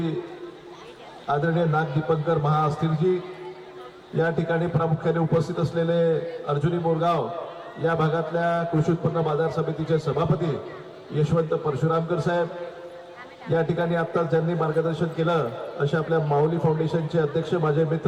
आदरणीय नाग दीपंकर महाअस्थिरजी, या ठिकाणी प्रामुख्याने उपस्थित असलेले अर्जुनी मोरगाव या भागातल्या कृषी उत्पन्न बाजार समितीचे सभापती यशवंत परशुरामकर साहेब, या ठिकाणी आत्ताच ज्यांनी मार्गदर्शन केलं अशा आपल्या माऊली फाउंडेशनचे अध्यक्ष माझे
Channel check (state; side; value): identical; both; correlation 1.00